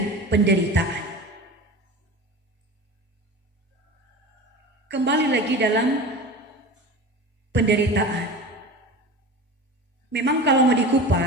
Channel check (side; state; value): both; normal; correlation 0.33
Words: penderitaan. Kembali lagi dalam penderitaan. Memang kalau mau